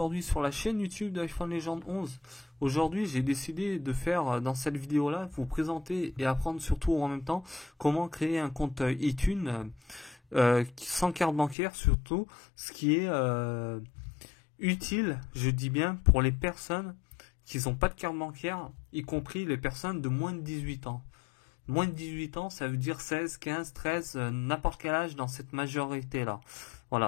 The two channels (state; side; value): drops out; right; at 11.6 s